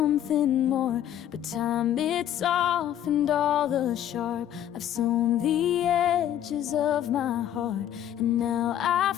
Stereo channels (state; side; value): quieter; right; 11.0 dB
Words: more. But time, it softened all the sharp. I've sewn the edges of my heart, and now I